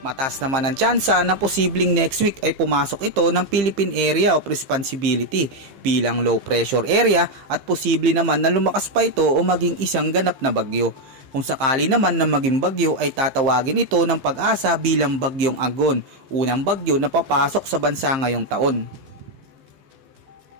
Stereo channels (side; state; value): left; late; 15 ms